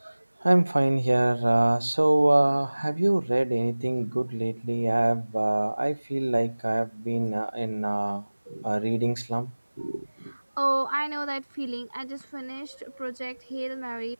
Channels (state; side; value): inverted; both; correlation -1.00